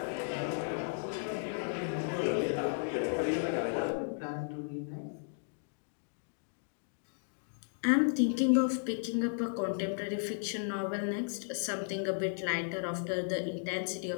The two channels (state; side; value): silent; right; digital silence